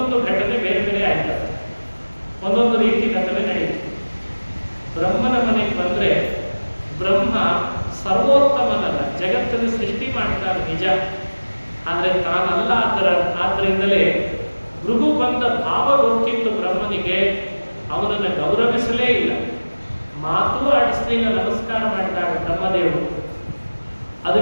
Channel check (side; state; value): both; inverted; correlation -1.00